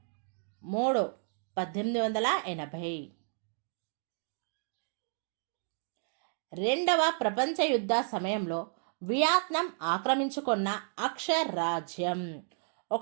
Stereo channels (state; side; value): silent; left; digital silence